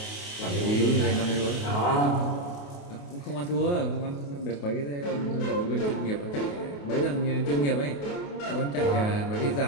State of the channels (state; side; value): late; right; 28 ms